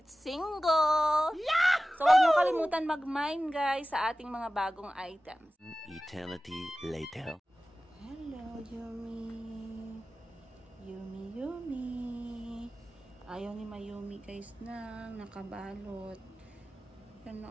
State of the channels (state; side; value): normal; both; correlation 0.96